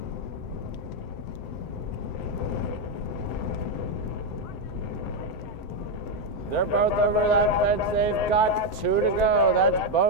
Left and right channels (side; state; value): right; late; 7.8 ms